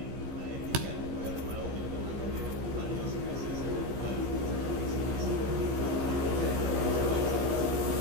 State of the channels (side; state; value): left; late; 15 ms